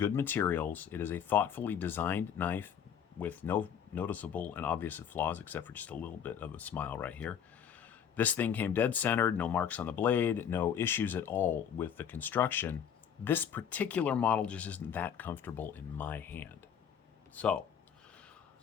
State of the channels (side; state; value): right; quieter; 8.3 dB